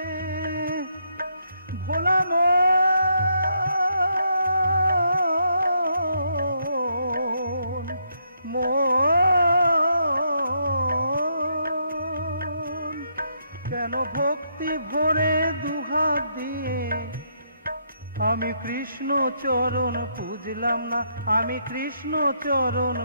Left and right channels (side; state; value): both; inverted; correlation -0.75